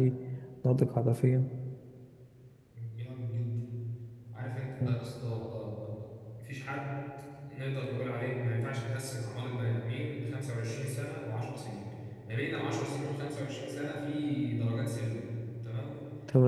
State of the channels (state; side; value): identical; both; correlation 1.00